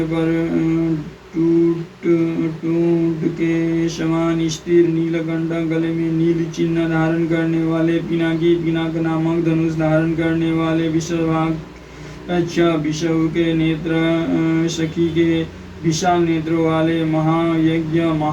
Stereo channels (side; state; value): both; identical; correlation 1.00